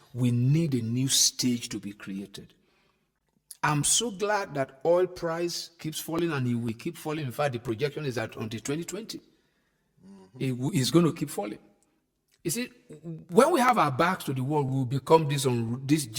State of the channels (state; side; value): identical; both; correlation 1.00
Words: we need a new stage to be created. I'm so glad that oil price keeps falling, and it will keep falling. In fact, the projection is that until 2020, it's going to keep falling. You see, when we have our backs to the wall, we will become this